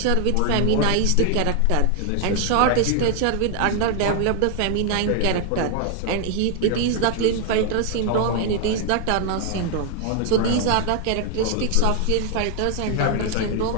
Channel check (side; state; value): both; different; correlation 0.00